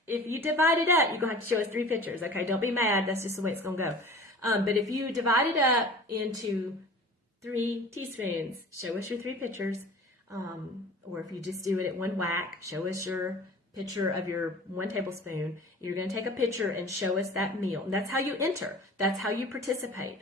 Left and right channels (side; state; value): both; normal; correlation 0.42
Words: up, you're going to have to show us 3 pictures. Okay, don't be mad. That's just the way it's going to go. But if you divide it up into 3 teaspoons, show us your 3 pictures. Or if you just do it at one whack, show us your picture of your 1 tablespoon. You're going to take a picture and show us that meal. And that's how you enter. That's how you participate.